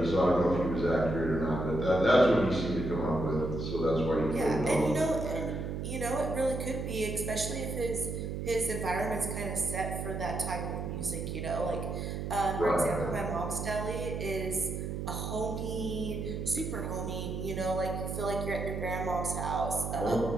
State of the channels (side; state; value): right; noise; hum, 4 dB below the sound